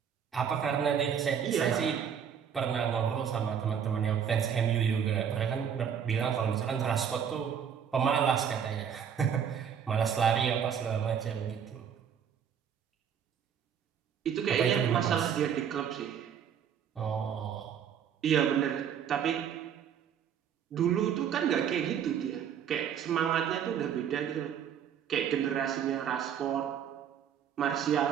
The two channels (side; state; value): left; quieter; 8.2 dB